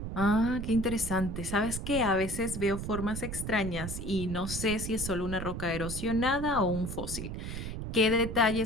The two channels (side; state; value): right; noise; rumble, 6 dB below the sound